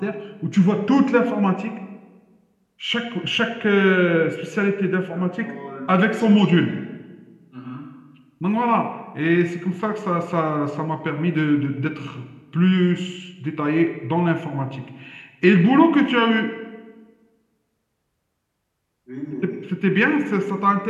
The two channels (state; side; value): identical; both; correlation 1.00